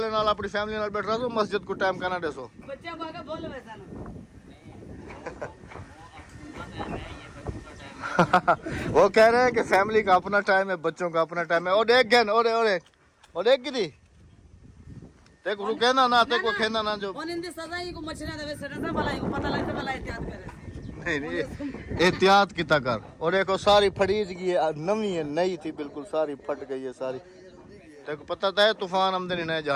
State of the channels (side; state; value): both; identical; correlation 1.00